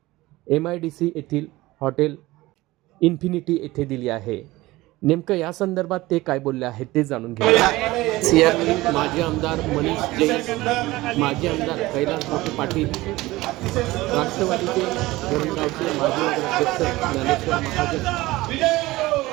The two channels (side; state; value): left; quieter; 19.0 dB